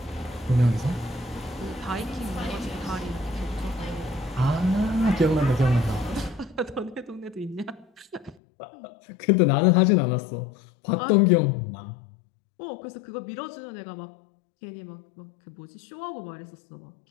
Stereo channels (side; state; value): right; drops out; at 8.3 s